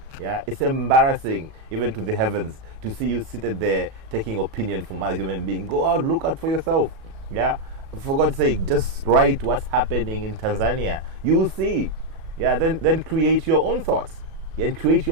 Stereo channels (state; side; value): late; left; 37 ms